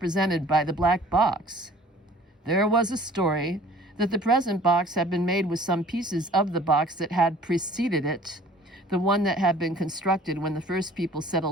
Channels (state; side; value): normal; both; correlation 0.50